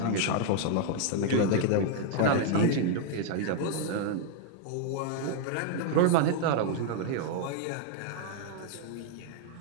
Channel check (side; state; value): both; different; correlation 0.00